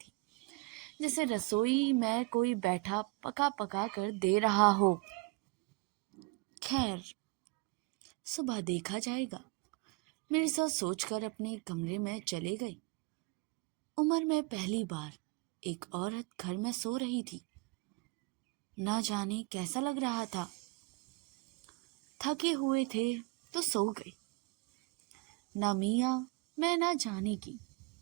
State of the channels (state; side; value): quieter; left; 25.9 dB